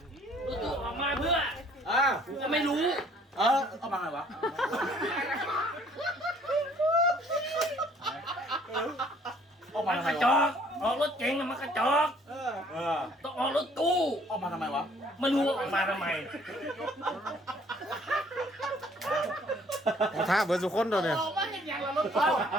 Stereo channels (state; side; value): normal; both; correlation 0.59